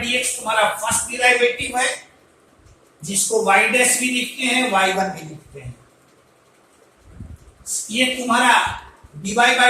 dx तुम्हारा फर्स्ट डिराइवेटिव है, जिसको y डैश भी लिखते हैं, y1 भी लिखते हैं। ये तुम्हारा dy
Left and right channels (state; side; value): identical; both; correlation 1.00